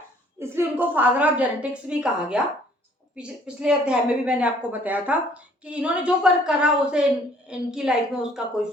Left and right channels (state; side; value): normal; both; correlation 0.59